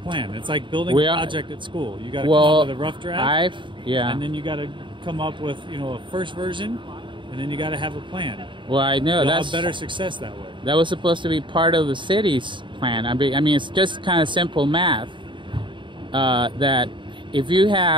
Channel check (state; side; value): late; left; 0.23 ms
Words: It's like building a project at school. You got to come up with a rough draft, and then you got to come up with a first version, and then you got to have a plan. Well, I know you'll have better success that way. That was supposed to be part of the city's plan. I mean, it's just kind of simple math. That if you